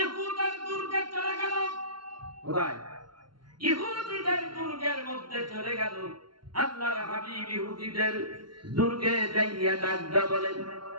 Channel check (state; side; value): late; left; 0.72 ms